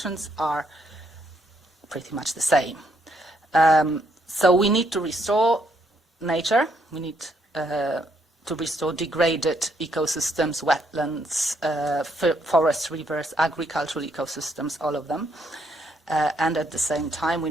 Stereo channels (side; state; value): both; normal; correlation 0.73